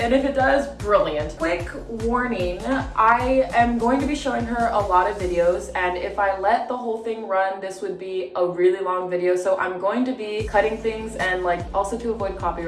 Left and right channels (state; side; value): identical; both; correlation 1.00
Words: if it does, brilliant. Quick warning, I am going to be showing her a lot of videos, and if I let the whole thing run, this would be a really long video. So I'm going to be cutting things and like also to avoid